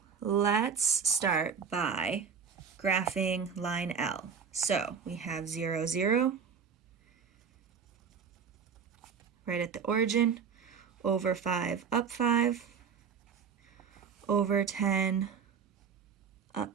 let's start by graphing line L. So we have 0, 0, right at the origin, over 5, up 5, over 10, up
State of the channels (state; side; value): quieter; left; 6.5 dB